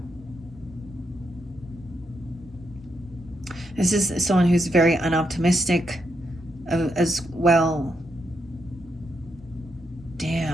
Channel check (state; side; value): normal; both; correlation 0.80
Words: This is someone who's very unoptimistic as well.